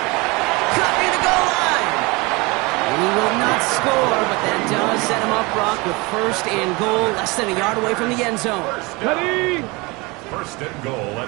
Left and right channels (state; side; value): quieter; left; 25.4 dB